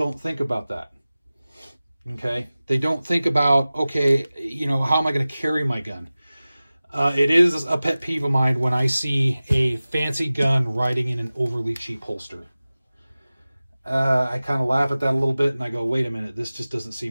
think about that. Okay? They don't think about, okay, you know, how am I going to carry my gun? It is a pet peeve of mine when I see a fancy gun riding in an overly cheap holster. I kind of laugh at that a little bit and I go, wait a minute, this just doesn't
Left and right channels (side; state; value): both; inverted; correlation -0.97